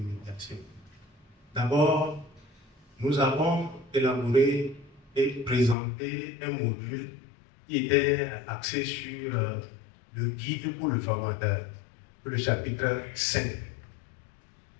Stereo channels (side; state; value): right; drops out; at 5.8 s